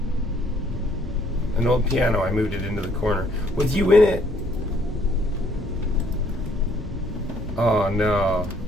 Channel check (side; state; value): both; normal; correlation 0.65